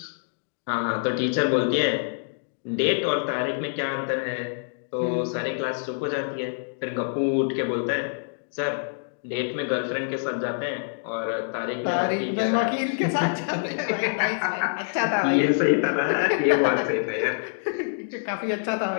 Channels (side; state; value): right; silent; digital silence